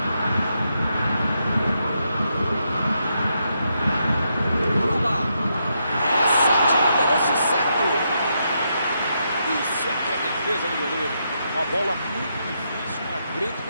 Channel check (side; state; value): both; inverted; correlation -0.81